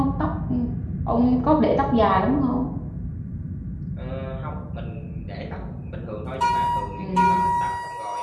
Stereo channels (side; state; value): both; identical; correlation 1.00